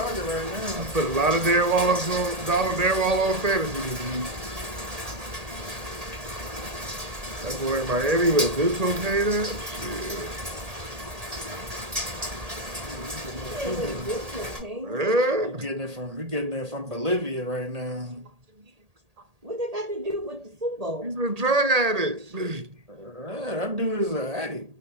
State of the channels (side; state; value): left; late; 1.8 ms